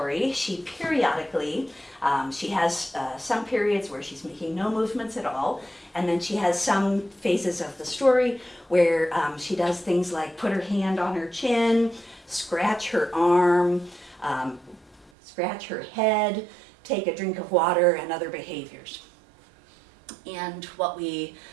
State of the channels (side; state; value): left; drops out; at 15.1 s